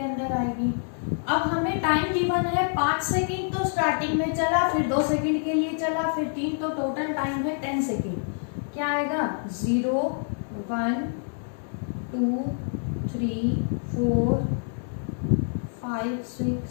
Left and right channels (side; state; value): right; silent; digital silence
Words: अंदर आएगी। अब हमें टाइम गिवन है 5 सेकंड, तो स्टार्टिंग में चला, फिर 2 सेकंड के लिए चला, फिर 3, तो टोटल टाइम है 10 सेकंड। क्या आएगा 0 1 2 3 4 5